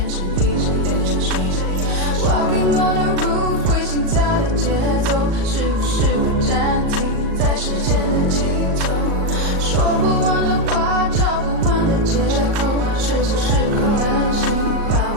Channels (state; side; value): late; left; 38 ms